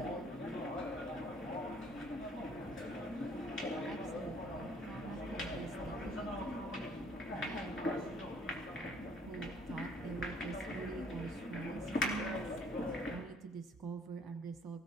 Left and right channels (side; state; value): both; normal; correlation 0.60